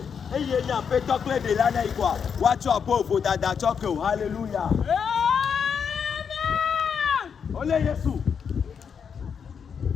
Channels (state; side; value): quieter; right; 6.8 dB